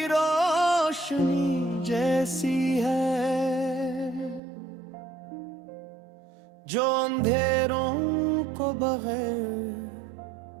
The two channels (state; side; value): drops out; left; at 4.4 s